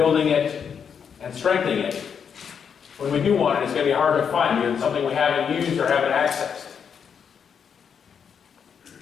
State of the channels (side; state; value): right; quieter; 7.1 dB